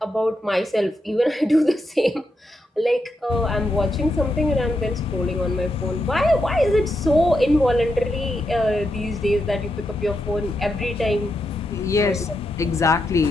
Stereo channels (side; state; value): both; normal; correlation 0.84